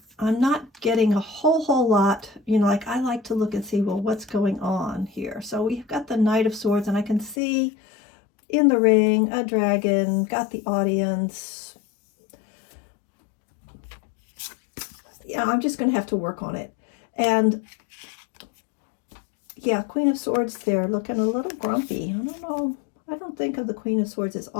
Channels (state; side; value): drops out; right; at 7.4 s